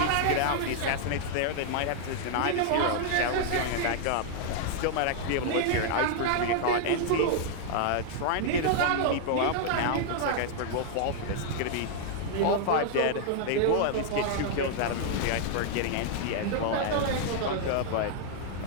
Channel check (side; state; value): both; different; correlation -0.01